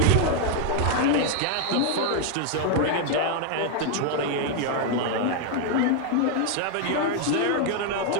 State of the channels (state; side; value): different; both; correlation 0.00